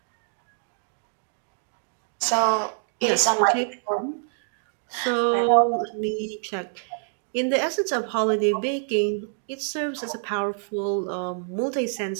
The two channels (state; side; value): silent; left; 61 dB below the other